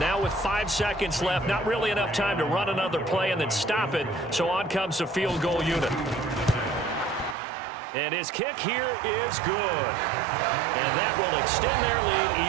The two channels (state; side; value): drops out; left; at 7.4 s